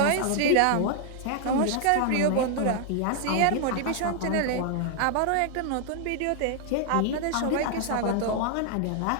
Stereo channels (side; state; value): both; different; correlation 0.00